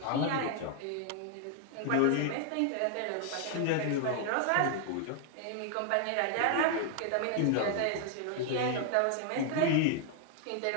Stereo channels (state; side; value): different; both; correlation 0.00